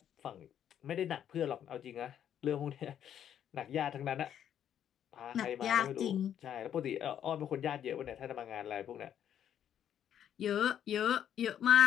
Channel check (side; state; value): right; quieter; 9.7 dB